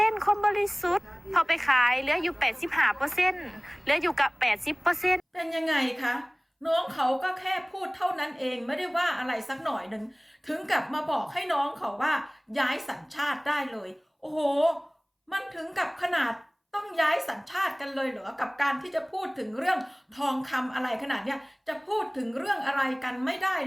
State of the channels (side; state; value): both; identical; correlation 1.00